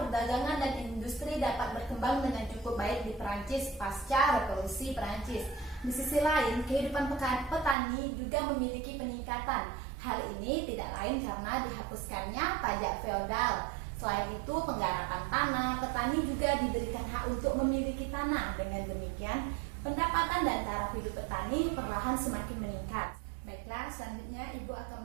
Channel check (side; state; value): left; drops out; at 7.8 s